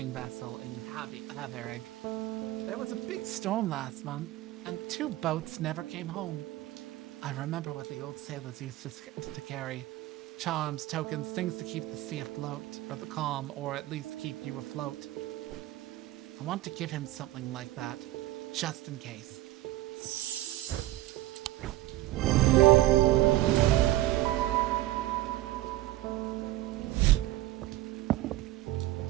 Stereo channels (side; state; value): left; quieter; 16.3 dB